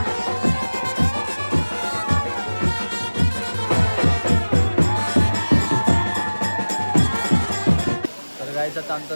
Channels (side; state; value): both; inverted; correlation -1.00